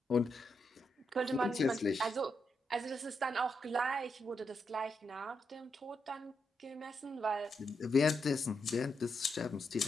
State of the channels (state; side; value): normal; both; correlation 0.83